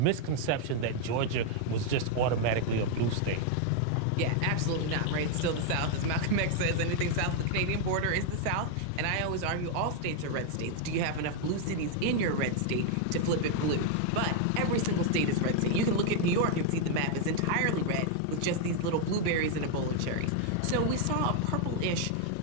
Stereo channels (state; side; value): different; both; correlation 0.00